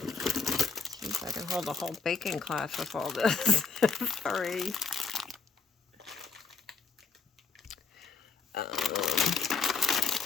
hold a whole baking class with all this. 3.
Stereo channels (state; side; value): quieter; right; 5.0 dB